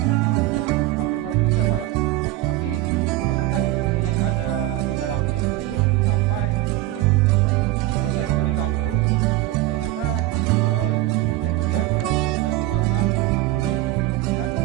setengah liter, hampir 1 liter malah. Tapi kepekatan nutrisi yang ada di dalam air itu belum sampai 1000. Akhirnya saya memberikan terus, ternyata di ujungnya saya melihat daunnya sudah berwarna kuning. Dan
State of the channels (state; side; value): quieter; left; 16.4 dB